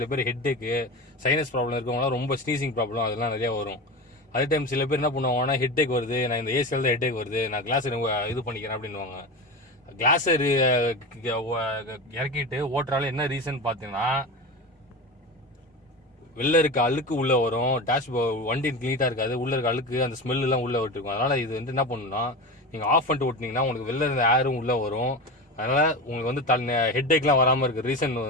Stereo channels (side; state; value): both; normal; correlation 0.25